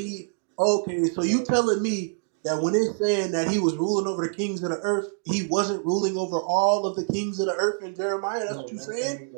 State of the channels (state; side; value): silent; left; digital silence